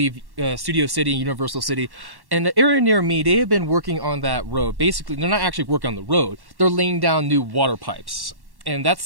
Studio City and Universal City. And the area near me, they have been working on that road. Basically, they're not actually working on the road. They're laying down new water pipes. And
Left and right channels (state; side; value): late; left; 1.1 ms